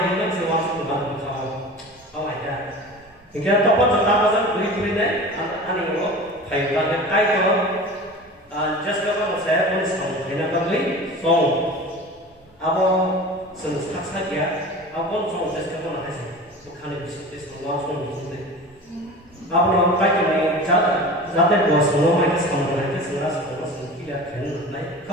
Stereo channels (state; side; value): normal; both; correlation 0.35